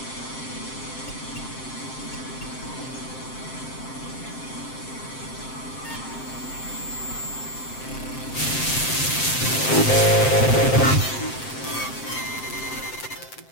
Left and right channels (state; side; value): late; right; 7.7 ms